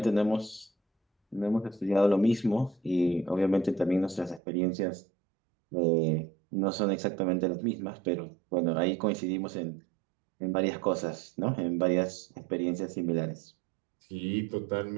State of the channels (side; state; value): left; drops out; at 4.4 s